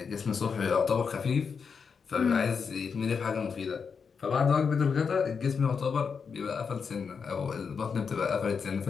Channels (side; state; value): right; quieter; 5.9 dB